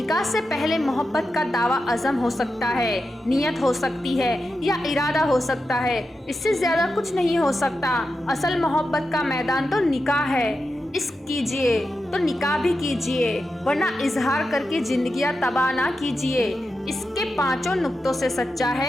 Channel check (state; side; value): normal; both; correlation 0.89